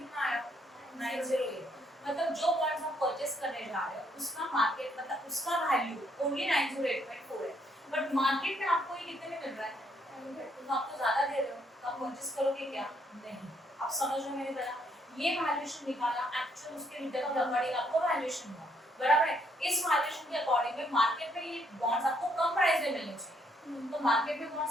आया 908 मतलब जो बॉन्ड्स हम परचेस करने जा रहे हैं उसका मार्केट मतलब उसका वैल्यू ओनली 908.4 है, बट मार्केट में आपको ये कितने में मिल रहा है, तो आपको ज्यादा दे रहे हो तो आप परचेस करोगे क्या, नहीं, आप समझ रहे हो मेरी तरह, ये वैल्यूएशन निकाला एक्चुअल उसके रिटर्न के अकॉर्डिंग आपको वैल्यूएशन हुआ, बराबर है, इस वैल्यूएशन के अकॉर्डिंग में मार्केट में ये बॉन्ड्स आपको कम प्राइस में मिलने चाहिए, तो मार्केट में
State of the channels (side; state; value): both; normal; correlation 0.71